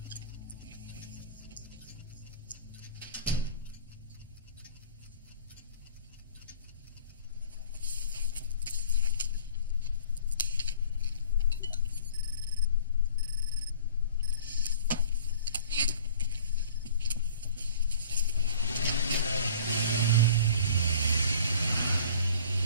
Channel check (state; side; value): inverted; both; correlation -0.48